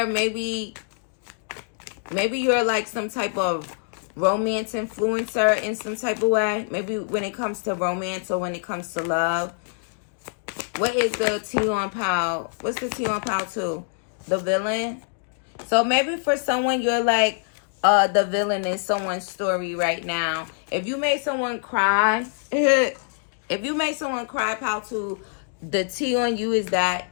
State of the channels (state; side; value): silent; right; digital silence